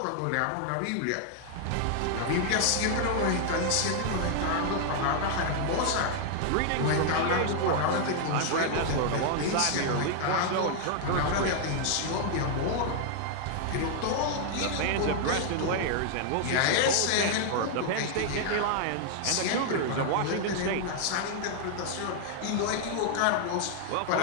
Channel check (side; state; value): both; different; correlation 0.00